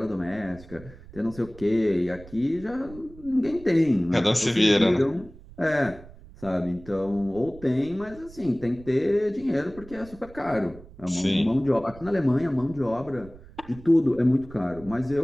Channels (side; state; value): right; noise; rumble, 19 dB below the sound